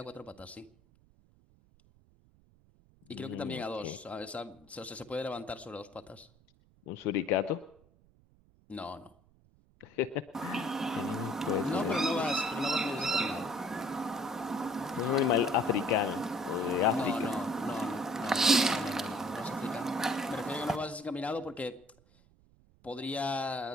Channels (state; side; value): noise; right; rumble, 30 dB below the sound